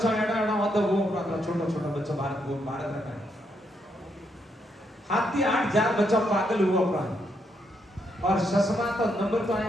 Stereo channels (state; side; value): normal; both; correlation 0.77